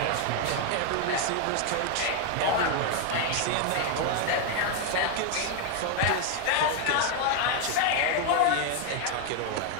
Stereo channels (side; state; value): both; different; correlation 0.01